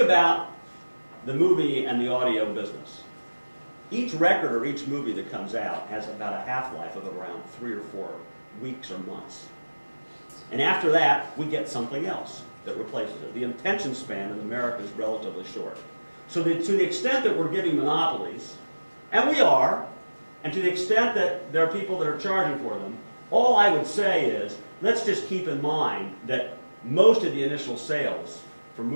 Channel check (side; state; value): both; inverted; correlation -1.00